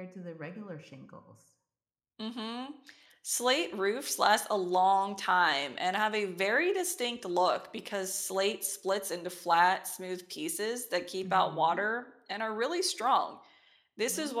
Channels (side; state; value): both; identical; correlation 1.00